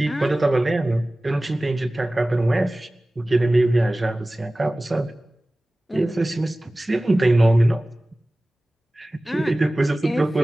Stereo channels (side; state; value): both; normal; correlation 0.98